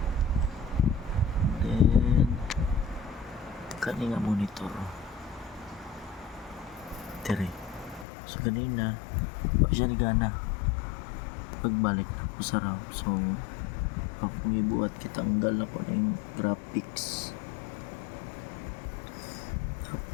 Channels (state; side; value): drops out; right; at 8.1 s